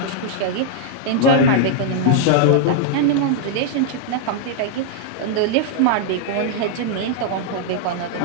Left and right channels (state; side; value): different; both; correlation -0.01